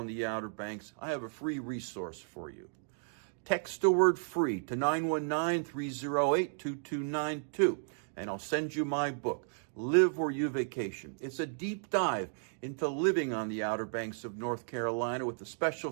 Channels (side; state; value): left; silent; digital silence